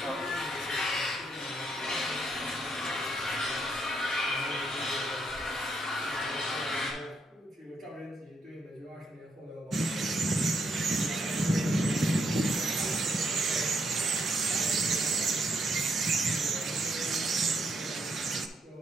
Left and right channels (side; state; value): both; normal; correlation 0.75